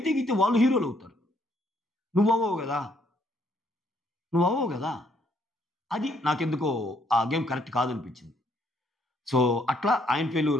గీతే వాళ్ళు హీరోలు అవుతారు. నువ్వు అవ్వవు కదా. అది నాకెందుకో ఆ గేమ్ కరెక్ట్ కాదనిపించింది. సో అట్లా ఆయన ఫెయిల్యూర్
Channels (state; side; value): normal; both; correlation 0.69